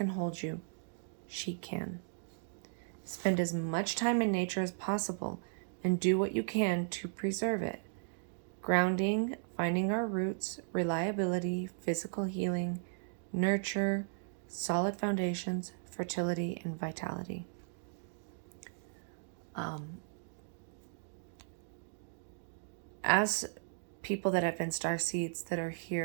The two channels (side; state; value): left; silent; digital silence